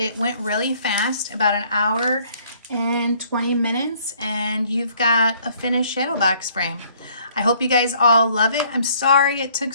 went really fast, about an hour and 20 minutes, and you've got a finished shadow box frame. I hope you guys all love it. I'm sorry it took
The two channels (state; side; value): inverted; both; correlation -0.61